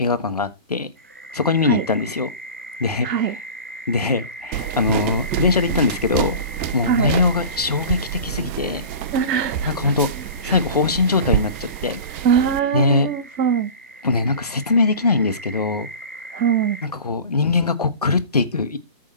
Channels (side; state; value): both; inverted; correlation -0.35